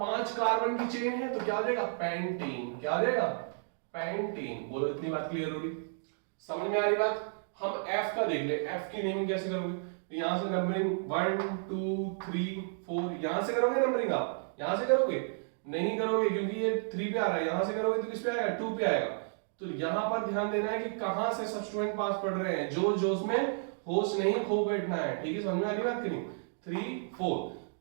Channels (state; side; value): silent; left; digital silence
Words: कार्बन की चेन है तो क्या हो जाएगा, पेंटीन, क्या हो जाएगा, पेंटीन। बोलो इतनी बात क्लियर होगी, समझ में आ रही बात। हम F का देख ले, F की नेमिंग कैसे करोगे, तो यहां से नंबरिंग 1 2 3 4, यहां से करोगे नंबरिंग, आप यहां से करोगे, नहीं करोगे क्योंकि ये 3 पे आ रहा है, यहां से करोगे तो किस पे आएगा, 2 पे आएगा। तो यहां पर ध्यान देना है कि कहां से सब्स्टिट्यूएंट पास पड़ रहे हैं, जो जोश में होश नहीं खो बैठना है, ठीक है, समझ में आ रही बात कि नहीं। 3 4,